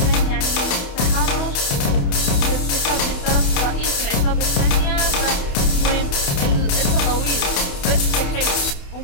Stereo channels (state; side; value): late; right; 28 ms